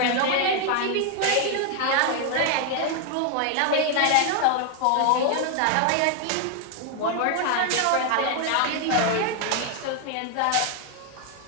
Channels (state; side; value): different; both; correlation 0.00